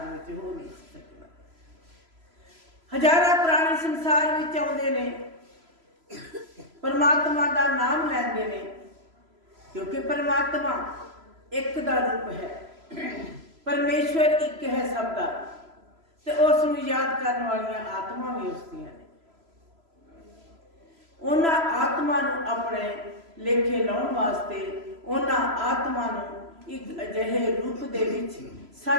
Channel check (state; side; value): late; left; 3.0 ms